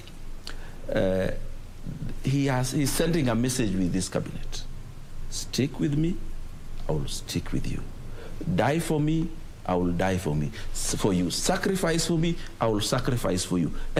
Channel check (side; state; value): both; identical; correlation 1.00